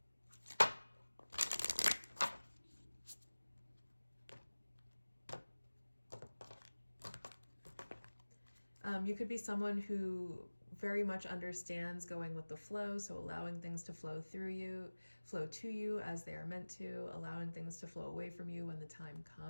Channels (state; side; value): inverted; both; correlation -1.00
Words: You could be someone who very much understands going with the flow, so allowing things to flow to you as they are meant to, allowing things to flow away from you when the time